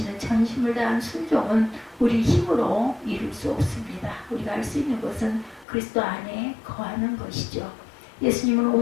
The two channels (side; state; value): right; drops out; at 5.7 s